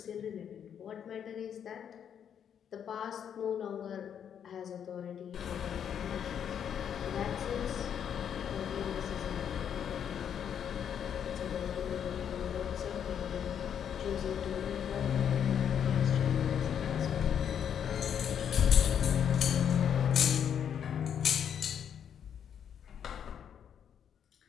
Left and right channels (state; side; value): quieter; right; 8.6 dB